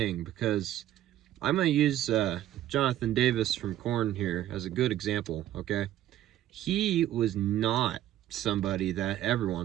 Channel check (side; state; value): left; quieter; 12.8 dB